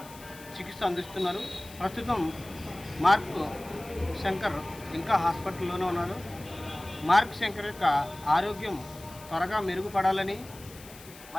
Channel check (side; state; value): left; noise; hiss, 19 dB below the sound